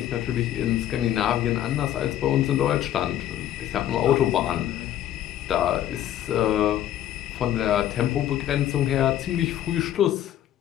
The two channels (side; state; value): right; quieter; 11.9 dB